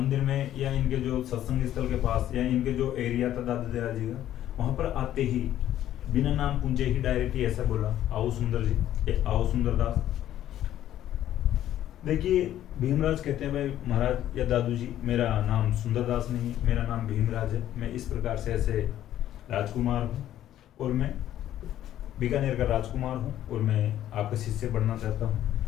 में या इनके जो सत्संग स्थल के पास या इनके जो एरिया था दादू दयाल जी का, वहां पर आते ही बिना नाम पूछे ही डायरेक्ट ही ऐसा बोला, आओ सुंदर जी, ये आओ सुंदरदास। देखिए भीमराज कहते हैं भाई महाराज या दादू जी, मेरा नाम सुंदरदास नहीं, मेरा नाम भीमराज है, मैं इस प्रकार से ऐसे राजकुमार हूँ और मैं बीकानेर का राजकुमार हूँ और मैं आपका शिष्य बनना चाहता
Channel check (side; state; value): right; quieter; 12.2 dB